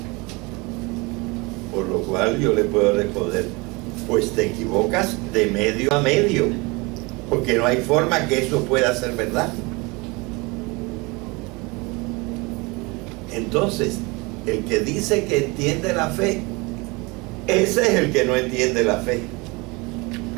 Por lo cual yo le puedo responder, pues te equivocas de medio a medio, porque no hay forma que eso pueda ser verdad. Entonces, el que dice que entiende la fe, ese es el que no entiende la fe.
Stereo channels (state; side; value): quieter; left; 26.2 dB